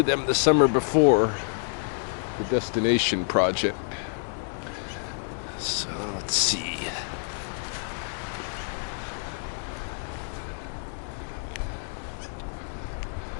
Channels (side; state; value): right; silent; digital silence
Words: them the summer before, the destination project. So let's see.